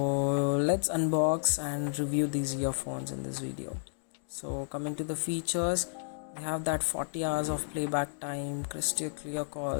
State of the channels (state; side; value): silent; right; digital silence